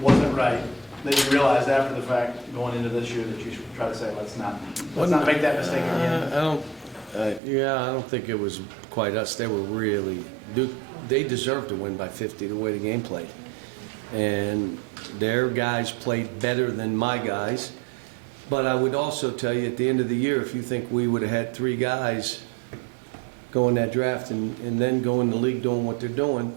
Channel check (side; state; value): left; drops out; at 7.4 s